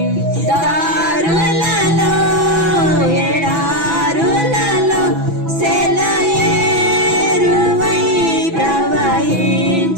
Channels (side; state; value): left; late; 6.0 ms